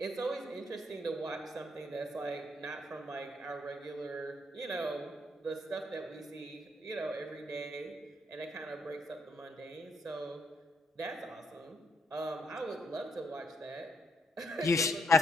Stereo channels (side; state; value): both; normal; correlation 0.74